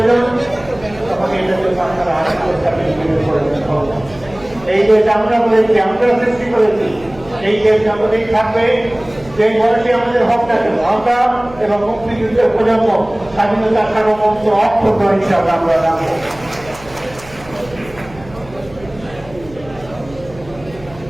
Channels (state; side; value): noise; right; hum, 20 dB below the sound